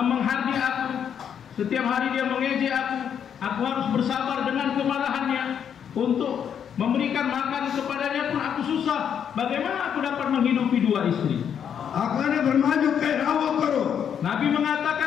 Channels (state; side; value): quieter; right; 8.3 dB